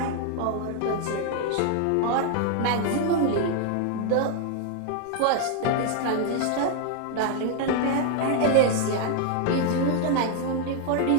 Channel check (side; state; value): both; different; correlation 0.00